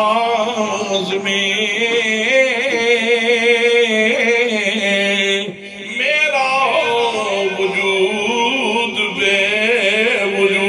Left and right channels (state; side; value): identical; both; correlation 1.00